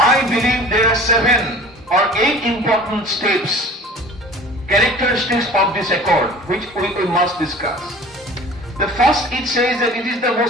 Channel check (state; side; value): normal; both; correlation 0.43